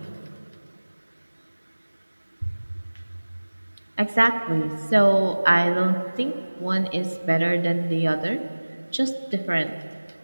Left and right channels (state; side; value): inverted; both; correlation -1.00